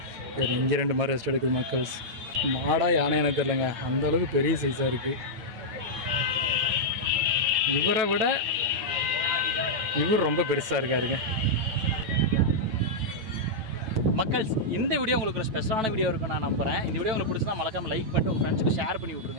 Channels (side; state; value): left; late; 9.2 ms